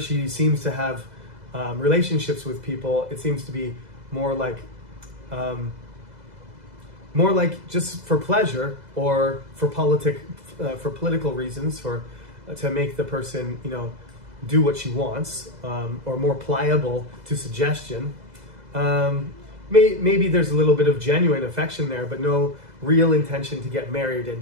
seems to have relationships with people, it seems to be more like just for pleasure or for political reasons, to make the person do what she wants, or more pliable to suggestion. Maybe there's a little bit of genuine affection there, but no real intention to get married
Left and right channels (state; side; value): late; left; 2.0 ms